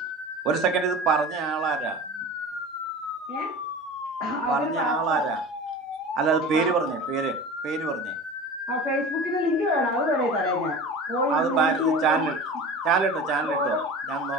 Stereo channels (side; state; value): both; normal; correlation 0.35